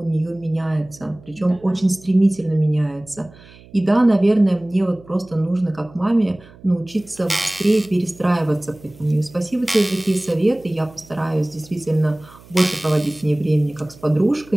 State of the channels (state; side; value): noise; right; hum, 23 dB below the sound